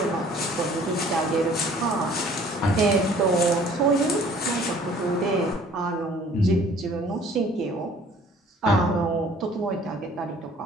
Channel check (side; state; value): both; normal; correlation 0.53